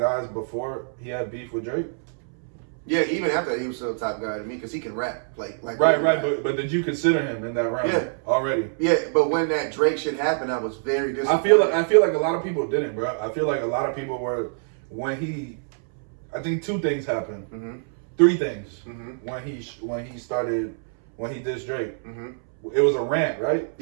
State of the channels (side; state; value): left; silent; 62 dB below the other